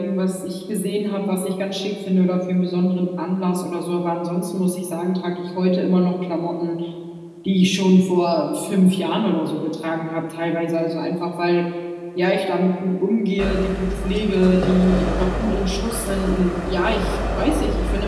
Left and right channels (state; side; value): identical; both; correlation 1.00